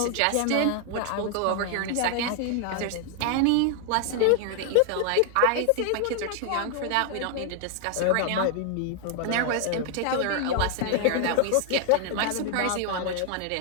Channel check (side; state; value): both; different; correlation 0.00